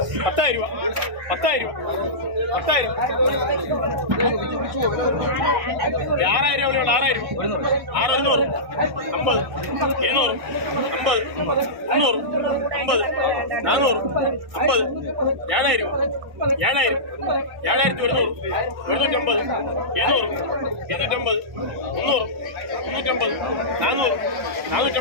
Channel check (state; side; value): late; left; 1.6 ms